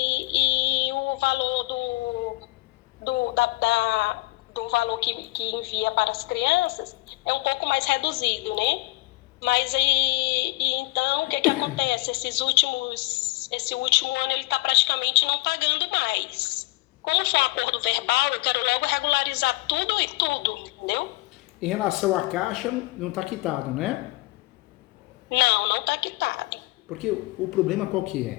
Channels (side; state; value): right; quieter; 22.2 dB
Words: o valor do valor que envia para as crianças é um pouco mais reduzido, né? Mas então o que acontece? Esse último ano ele está praticamente não pagando mais. Como foi um acordo verbal, eu quero logo regularizar tudo e tudo, entendeu? Em relação à Caixa, não está quitado, né? Não está quitado. Porque o problema qual que